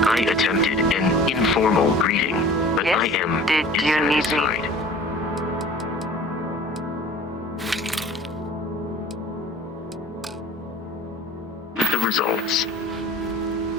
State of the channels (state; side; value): normal; both; correlation 0.45